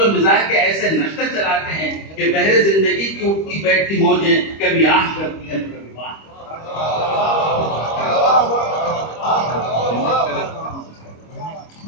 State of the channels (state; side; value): late; right; 25 ms